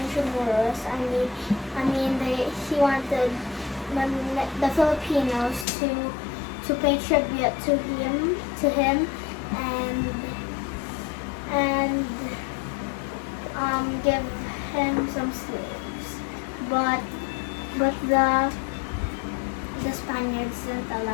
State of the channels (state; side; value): drops out; right; at 5.7 s